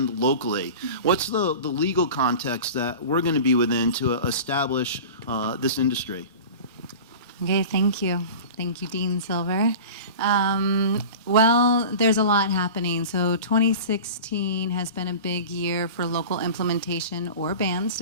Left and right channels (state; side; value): inverted; both; correlation -0.35